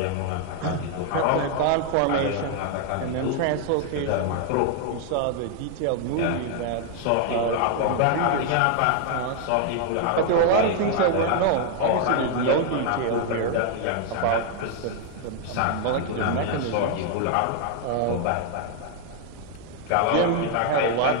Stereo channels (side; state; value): both; different; correlation 0.00